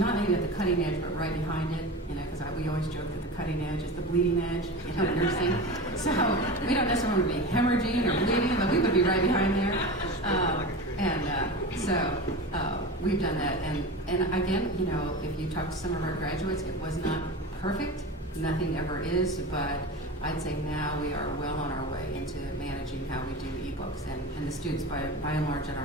maybe at the cutting edge, but right behind it, because we always joke that the cutting edge is the bleeding edge, nursing. So we don't necessarily want to be hemorrhaging or bleeding, but we would be right behind there. So we've done that. And again, if you talk to some of our graduates, it was not perfect. Nothing ever is, but I'd say now we are well on our way into managing how we do ebooks, and the students, by and large, in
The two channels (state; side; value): normal; both; correlation 0.28